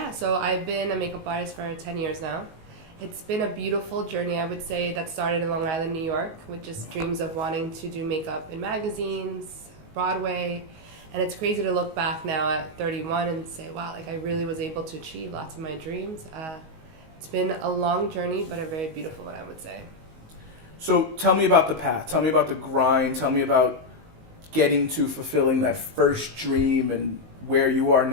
so I've been a makeup artist for 10 years now. It's been a beautiful journey, I would say, that started in Long Island, New York, with just dreams of wanting to do makeup in magazines, Broadway. And it's crazy to look back now at 31 and say, wow, like I really was able to achieve lots of my dreams. It's been a long journey, but a very beautiful one, I would say. So tell me about the path. Tell me about the grind. Tell me about getting to fulfilling that first dream and where you are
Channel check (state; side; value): late; left; 19 ms